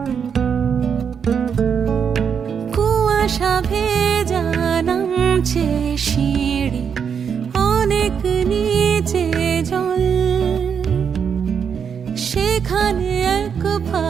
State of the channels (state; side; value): quieter; left; 7.1 dB